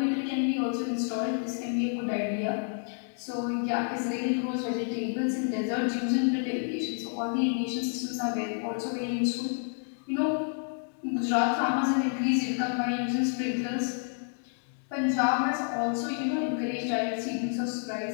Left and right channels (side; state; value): right; silent; 57 dB below the other